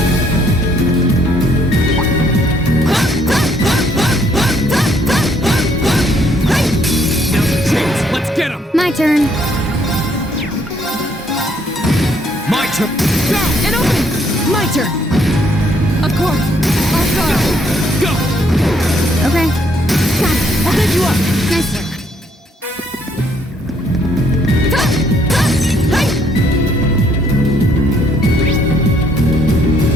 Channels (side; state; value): both; normal; correlation 0.68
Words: Now's the chance. Let's get him. My turn. My turn. Go. An opening. My turn. Of course. I'll go. Go. Okay. Got it! I'll bend you up! Nice work.